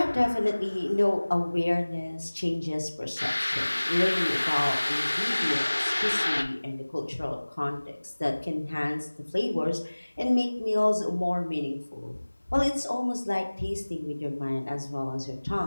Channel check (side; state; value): both; inverted; correlation -1.00